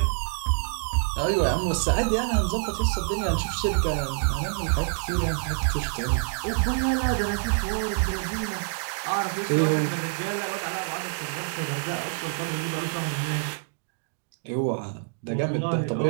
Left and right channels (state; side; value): silent; left; digital silence